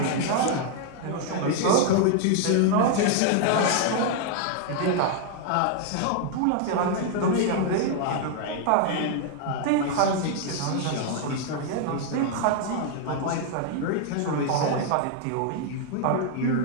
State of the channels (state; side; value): different; both; correlation 0.00